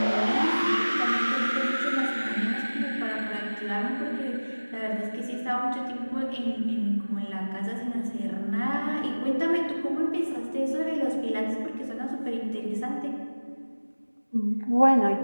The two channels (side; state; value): both; inverted; correlation -1.00